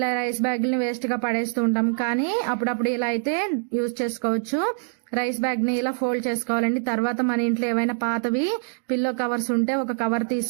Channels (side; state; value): left; silent; digital silence